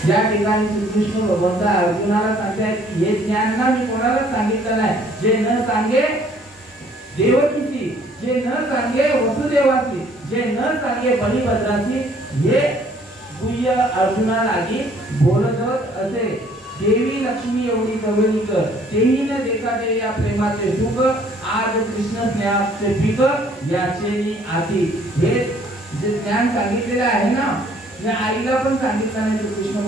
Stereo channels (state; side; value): normal; both; correlation 0.60